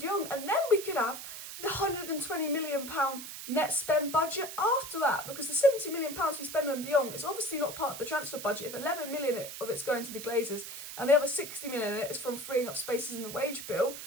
Jong. And then we could have the £120 million net spend budget after that, because the £70 million we spend on de Jong is obviously not part of the transfer budget. If 11 million of it's going to the Glazers and the other 60 million in it is from freeing up spaces in the wage bill,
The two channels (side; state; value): right; noise; hiss, 10 dB below the sound